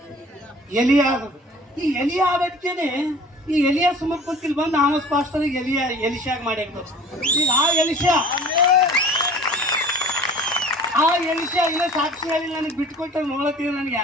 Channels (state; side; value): normal; both; correlation 0.45